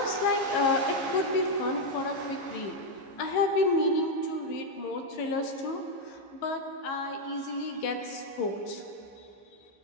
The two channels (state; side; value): late; right; 15 ms